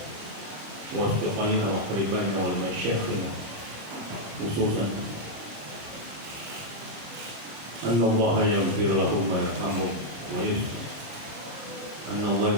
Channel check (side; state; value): left; late; 26 ms